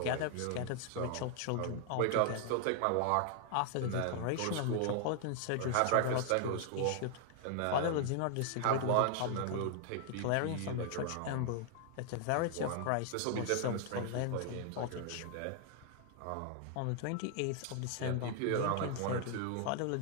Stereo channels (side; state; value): both; different; correlation 0.00